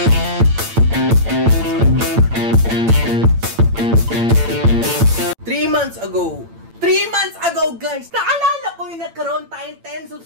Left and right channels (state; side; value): late; left; 8.8 ms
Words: months ago, guys, naalala ko yung nagkaroon tayong 10